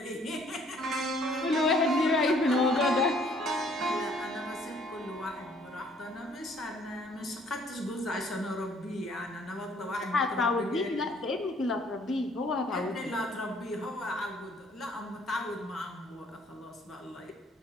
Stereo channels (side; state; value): both; normal; correlation 0.61